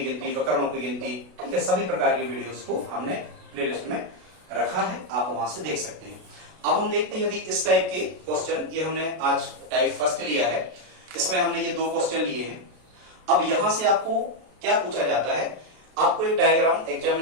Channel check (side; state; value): left; late; 32 ms